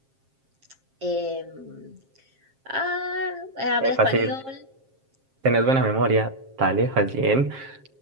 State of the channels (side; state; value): left; late; 7.5 ms